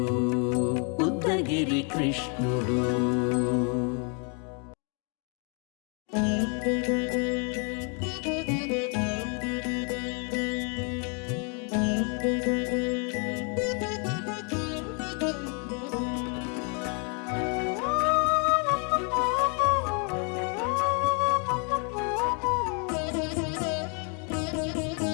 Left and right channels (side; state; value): right; quieter; 37.8 dB